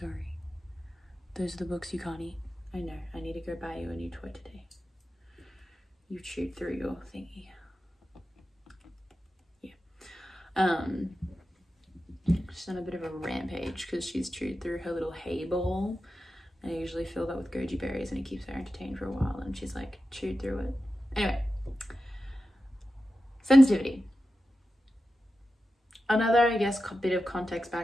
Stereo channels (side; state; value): both; normal; correlation 0.92